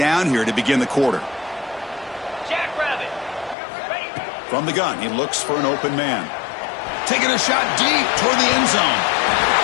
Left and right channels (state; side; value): drops out; right; at 3.6 s